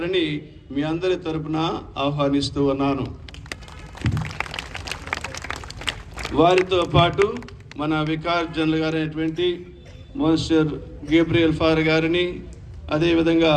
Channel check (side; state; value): both; identical; correlation 1.00